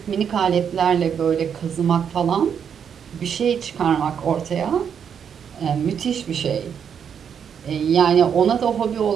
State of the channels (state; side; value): quieter; left; 7.7 dB